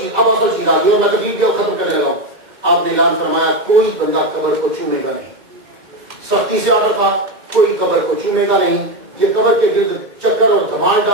چیز آ گئی اور میں تقریر بھی ختم کرنے لگا ہوں. آپ نے اعلان فرمایا کوئی بندہ قبر کو چھونے گا نہیں. سختی سے آرڈر تھا کوئی قبر کو چھونے گا نہیں. یہ قبر کے گرد چکر اور دھمال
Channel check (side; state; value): left; late; 2.0 ms